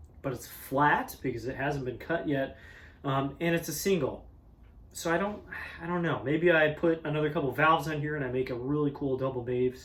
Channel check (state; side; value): identical; both; correlation 1.00